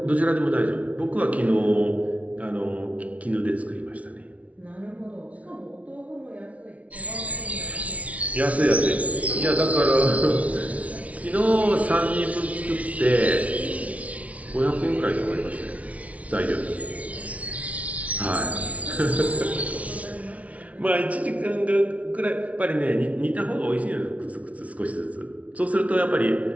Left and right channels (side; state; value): left; late; 0.067 ms